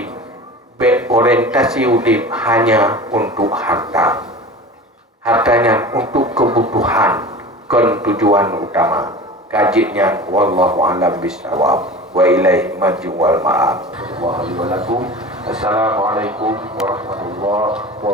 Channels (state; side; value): normal; both; correlation 0.35